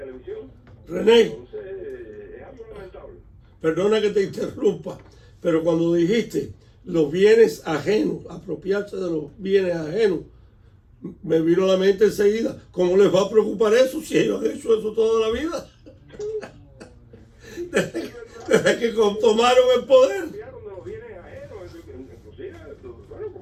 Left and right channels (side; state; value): both; identical; correlation 1.00